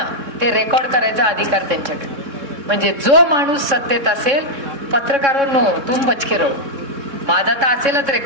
ते रेकॉर्ड करायचा अधिकार त्यांच्याकडे. म्हणजे जो माणूस सत्तेत असेल, पत्रकारांनो तुम बचके रहो. माझा तर असेलच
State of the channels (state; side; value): late; left; 3.6 ms